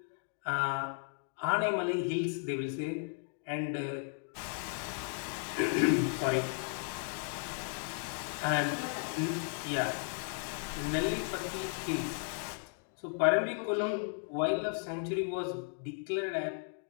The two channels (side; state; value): right; silent; 54 dB below the other